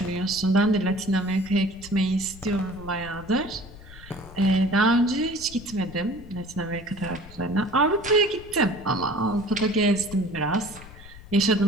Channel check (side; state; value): left; noise; rumble, 18 dB below the sound